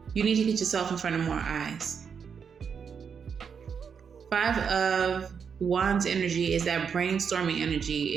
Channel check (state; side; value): quieter; left; 6.6 dB